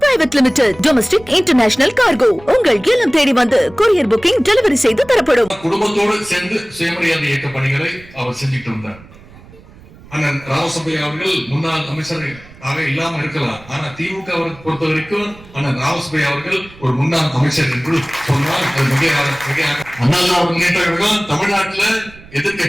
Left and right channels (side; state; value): right; noise; rumble, 22 dB below the sound